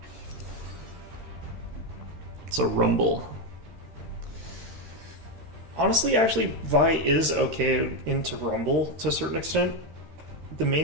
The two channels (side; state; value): left; late; 13 ms